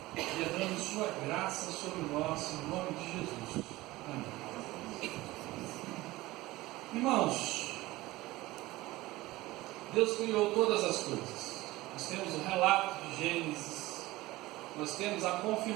derrame sua graça sobre nós, em nome de Jesus. Amém. Irmãos, Deus criou todas as coisas. Nós temos o relato de Gênesis, nós temos a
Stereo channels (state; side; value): quieter; left; 18.7 dB